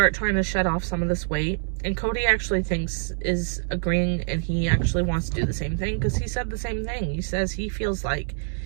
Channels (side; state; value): left; silent; 62 dB below the other